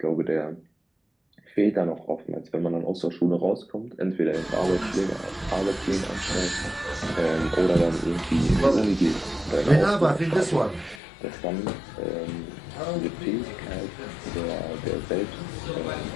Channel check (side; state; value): right; drops out; at 11.0 s